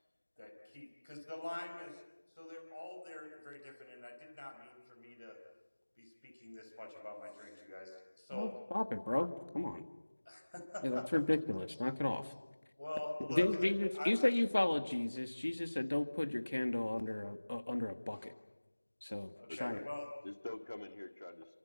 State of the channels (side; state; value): both; inverted; correlation -1.00